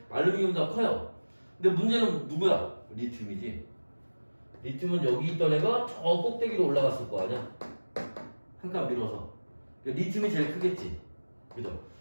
알루미늄보다 커요. 근데 문제는 누구야? 리튬이지. 리튬은 여기 있던 애가 저 꼭대기로 올라갔을 거 아니야? 한 칸 밀어서. 그러니까 리튬이 제일 크겠지. 그죠?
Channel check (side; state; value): both; inverted; correlation -1.00